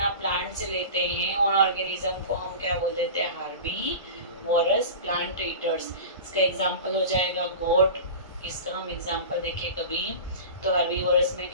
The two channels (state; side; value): inverted; both; correlation -0.33